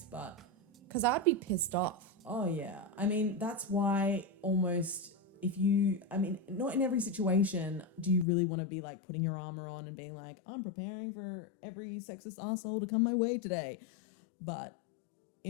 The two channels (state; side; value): drops out; right; at 8.2 s